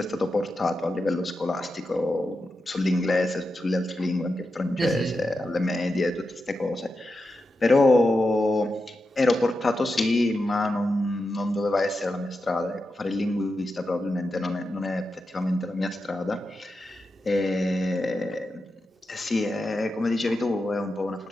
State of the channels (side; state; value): both; normal; correlation 0.89